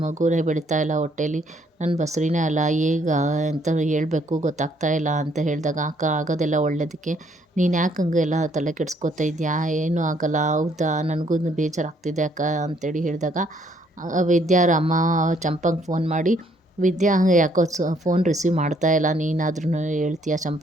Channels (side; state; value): both; normal; correlation 0.67